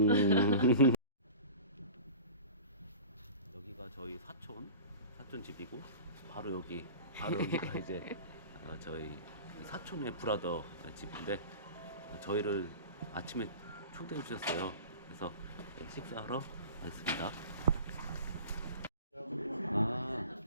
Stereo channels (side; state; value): both; inverted; correlation -0.37